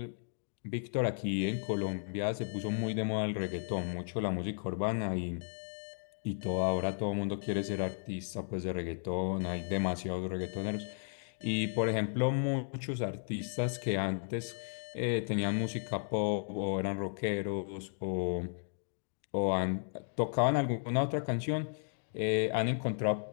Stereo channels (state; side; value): silent; right; digital silence